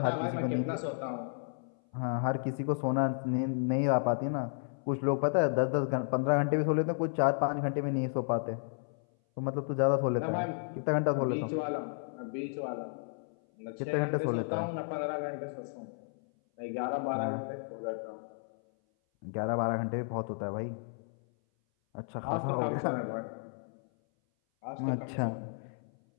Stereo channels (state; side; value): silent; right; 56 dB below the other